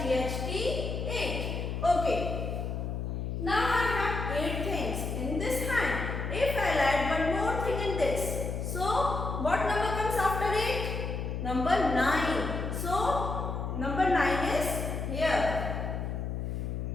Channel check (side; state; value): left; noise; hum, 3 dB below the sound